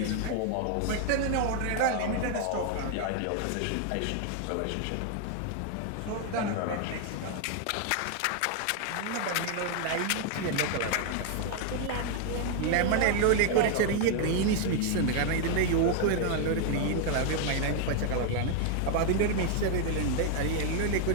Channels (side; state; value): both; different; correlation 0.00